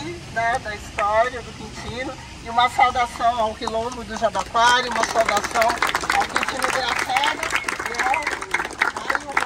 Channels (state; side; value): identical; both; correlation 1.00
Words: né, da história do Quintino, e uma saudação ao quilombo do Jabaquara, uma saudação ao Quintino Graciano e ao Mário